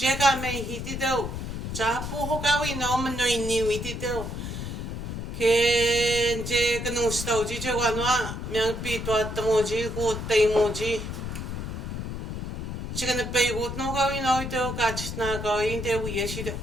ka me hi ti te cha pu ho ka wi no me no ni wi ti te ke je ka no sta u ji je wa no me pi to at mo ji ko te mo ji Chicken the bay would no go in oil, catch na go in there we issued.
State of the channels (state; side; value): noise; left; rumble, 5 dB below the sound